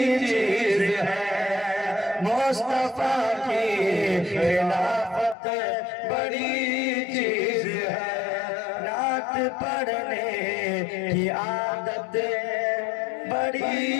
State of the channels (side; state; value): right; drops out; at 5.4 s